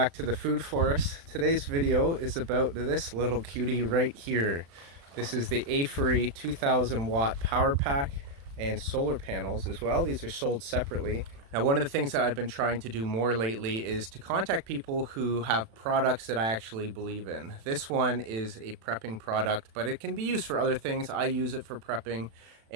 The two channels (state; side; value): late; left; 36 ms